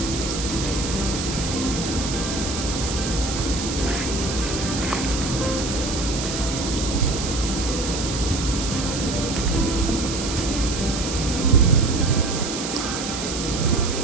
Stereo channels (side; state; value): right; noise; hiss, 6 dB below the sound